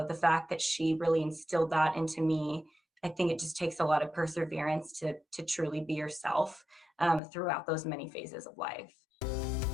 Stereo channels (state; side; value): drops out; right; at 7.2 s